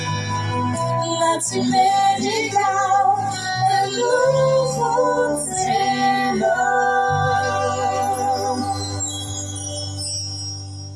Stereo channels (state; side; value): identical; both; correlation 1.00